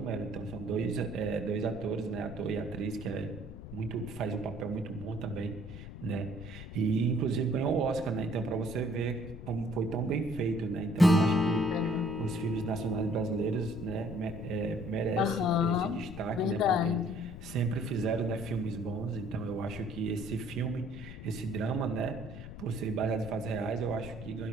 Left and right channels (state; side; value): noise; left; rumble, 12 dB below the sound